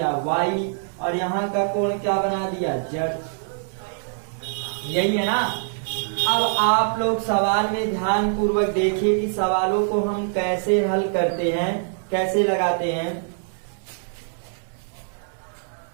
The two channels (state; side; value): silent; left; digital silence